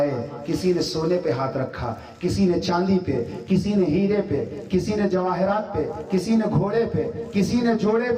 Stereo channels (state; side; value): identical; both; correlation 1.00